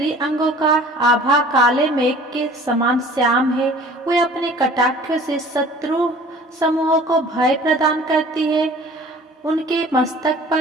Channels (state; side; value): normal; both; correlation 0.48